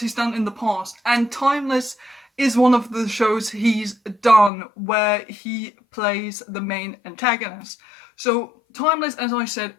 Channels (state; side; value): drops out; right; at 4.5 s